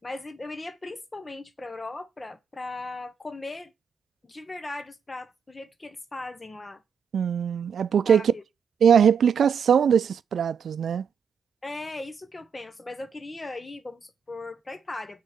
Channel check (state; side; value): quieter; left; 6.6 dB